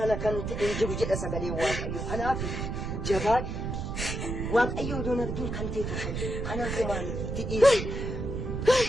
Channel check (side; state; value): right; noise; rumble, 3 dB below the sound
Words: ala kan ta'e jiru jedha sagalee Waaqayyo. Kanaaf jabaadhu. Waaqayyo iddoo arginu kan ta'e kanaaf umaamiti.